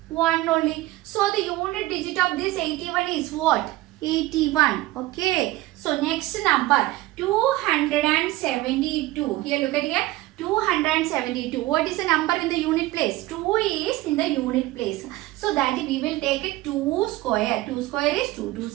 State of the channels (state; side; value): quieter; left; 17.9 dB